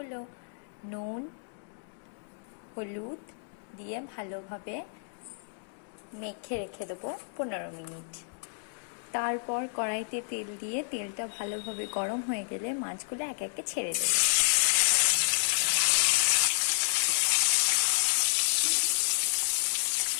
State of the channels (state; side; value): silent; right; digital silence